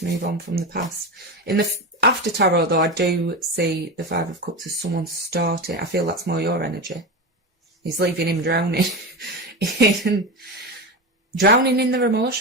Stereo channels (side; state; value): both; normal; correlation 0.20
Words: move on from the past. In the after tarot, though, I do see the Five of Cups as someone starting. I feel that's more your energy. He's leaving him drowning. Drowning in their